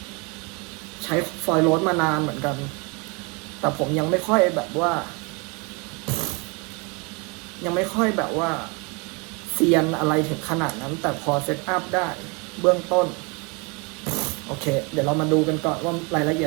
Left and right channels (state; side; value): quieter; left; 30.4 dB